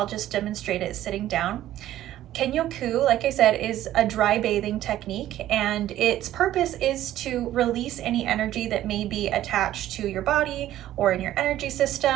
just demonstrate it sitting down. Kenyoku, like I said, is a dry bathing technique, and its purpose is to release any energy that may be attached to your body or in your energy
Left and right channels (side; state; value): left; quieter; 13.3 dB